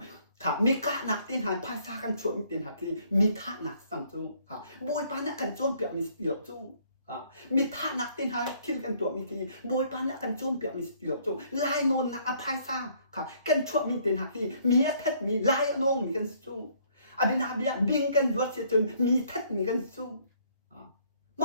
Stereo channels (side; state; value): both; inverted; correlation -0.63